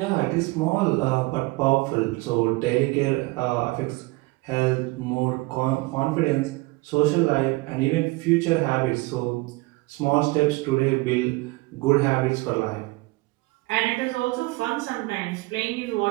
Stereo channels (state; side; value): quieter; left; 23.1 dB